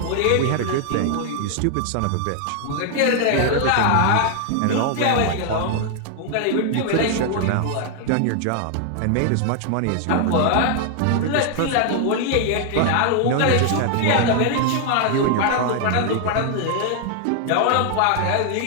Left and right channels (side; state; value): both; different; correlation 0.00